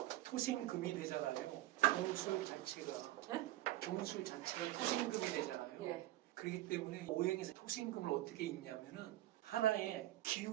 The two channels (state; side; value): quieter; left; 15.7 dB